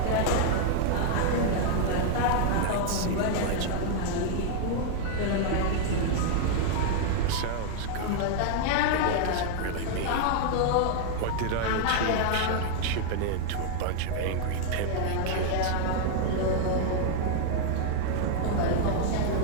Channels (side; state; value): both; different; correlation 0.00